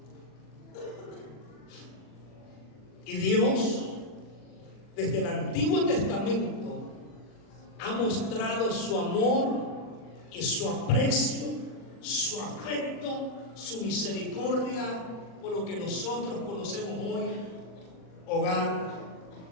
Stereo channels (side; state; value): right; late; 40 ms